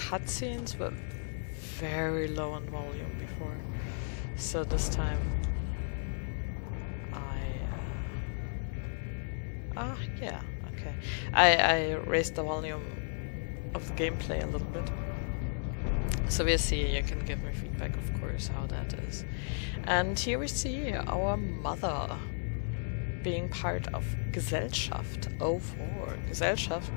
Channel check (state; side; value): silent; right; digital silence